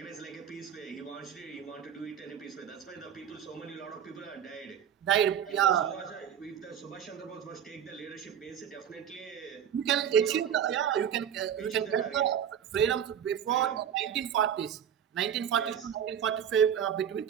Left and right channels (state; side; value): quieter; left; 9.0 dB